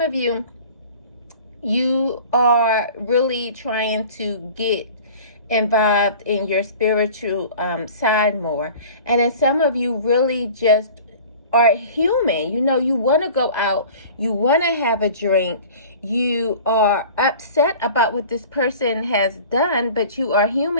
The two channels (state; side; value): inverted; both; correlation -0.43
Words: of you, you are really trying to get involved in your spiritual side more. And then some of you really just are human. You want to go out, you want to have a drink, you are upset about what this person has done, but you are